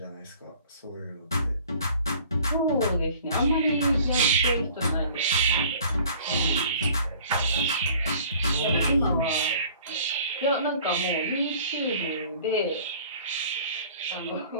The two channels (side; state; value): both; inverted; correlation -0.50